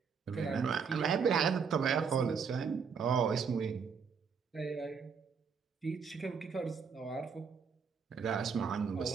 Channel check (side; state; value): left; quieter; 6.1 dB